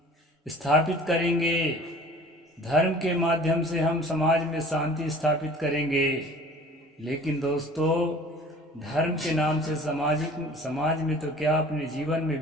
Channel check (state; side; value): normal; both; correlation 0.46